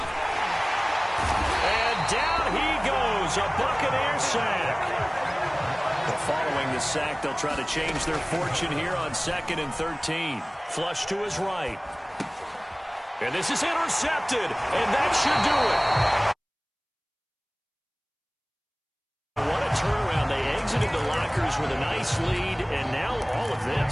And down he goes, a Buccaneer sack. But following the sack, they'll try to change their fortune here on 2nd and 13. Flush to his right. And this is intercepted, and that should do it. What a turnaround. They exited the lockers with a nice lead, and now all of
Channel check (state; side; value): identical; both; correlation 1.00